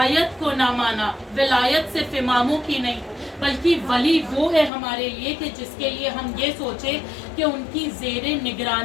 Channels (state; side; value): drops out; right; at 4.7 s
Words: کو نہ مانا، ولایت صرف اماموں کی نہیں بلکہ ولی وہ ہے ہمارے لیے کہ جس کے لیے ہم یہ سوچیں کہ ان کی زیر